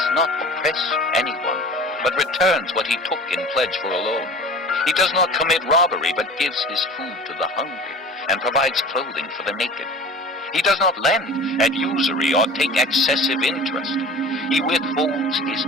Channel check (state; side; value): normal; both; correlation 0.39